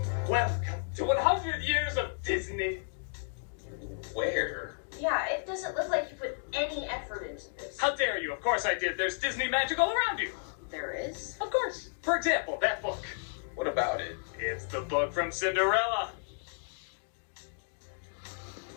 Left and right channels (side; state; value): right; silent; digital silence